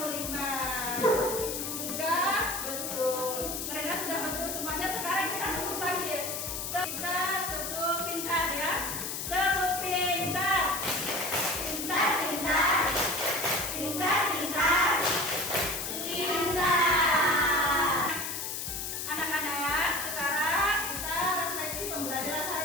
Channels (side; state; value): left; noise; hiss, 4 dB below the sound